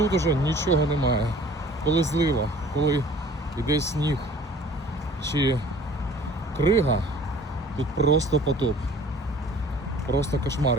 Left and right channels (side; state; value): both; normal; correlation 0.50